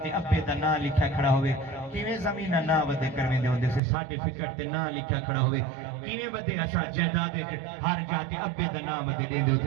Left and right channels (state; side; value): drops out; left; at 3.8 s